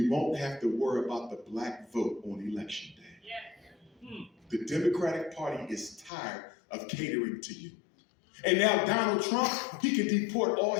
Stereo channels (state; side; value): drops out; right; at 6.1 s